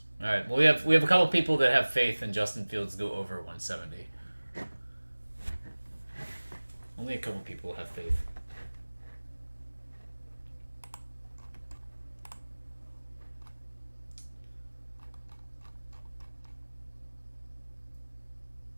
All right. Well, we have a couple people that have faith in Justin Fields to go over 170. Only a couple people have faith.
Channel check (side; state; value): both; inverted; correlation -1.00